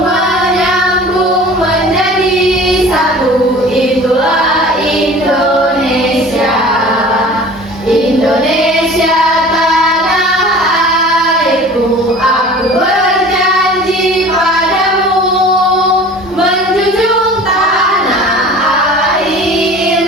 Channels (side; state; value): both; normal; correlation 0.43